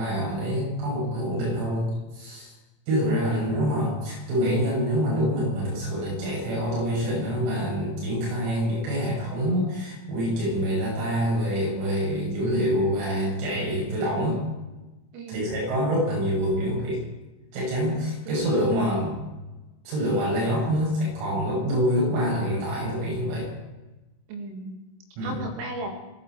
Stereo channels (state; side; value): late; left; 26 ms